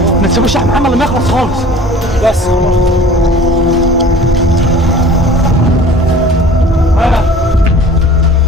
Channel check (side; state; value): both; normal; correlation 0.45